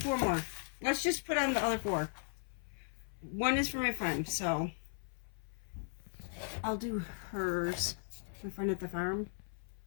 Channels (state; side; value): silent; right; 53 dB below the other